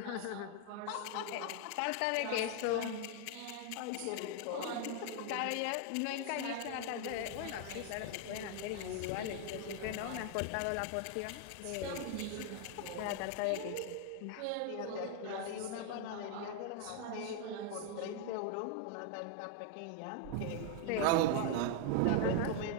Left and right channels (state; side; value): different; both; correlation 0.00